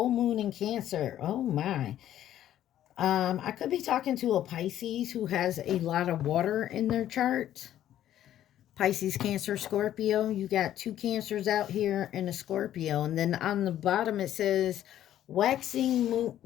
Moon in Cancer. Oh my. I could be talking to a Pisces who has a lot of water in their chart. Pisces, Cancer, Scorpio. You got two Cancers out here and a Scorpio. And then on the bottom it says, waxing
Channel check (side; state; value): right; quieter; 11.9 dB